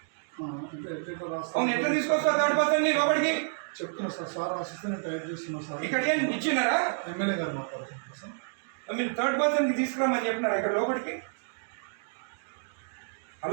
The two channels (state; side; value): silent; left; digital silence